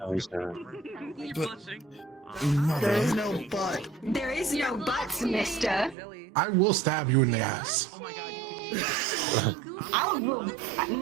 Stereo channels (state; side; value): drops out; left; at 6.0 s